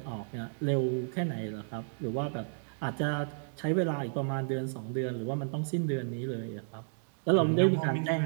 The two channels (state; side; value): silent; left; digital silence